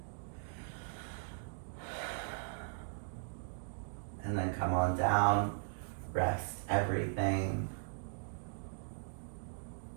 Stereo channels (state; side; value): silent; left; digital silence